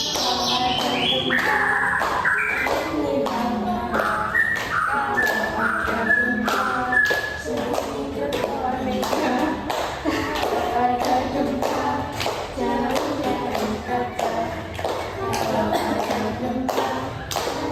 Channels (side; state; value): both; identical; correlation 1.00